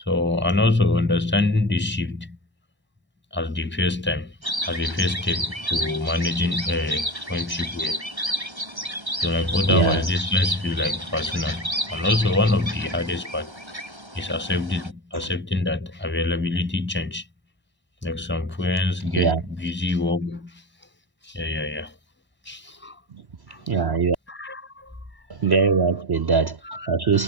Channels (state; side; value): late; left; 1.1 ms